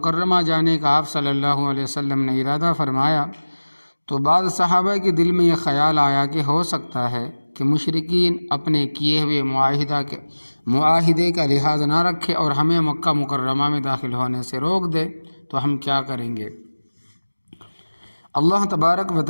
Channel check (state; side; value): inverted; both; correlation -1.00